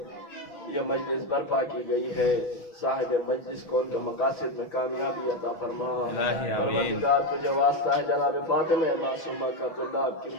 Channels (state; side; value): late; right; 6.0 ms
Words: یہ مجلس برپا کی گئی ہے، صاحب مجلس کو ان کے مقاصد میں کامیابی عطا فرما۔ پروردگار تجھے واسطہ ہے جناب فاطمہ معصومہ کا طلاب کی